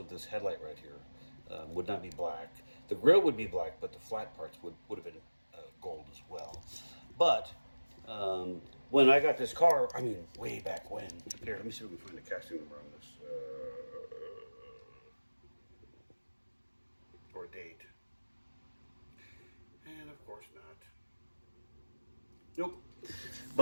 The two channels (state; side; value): inverted; both; correlation -1.00